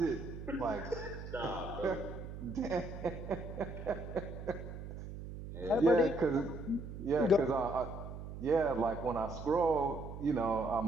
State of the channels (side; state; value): right; noise; hum, 9 dB below the sound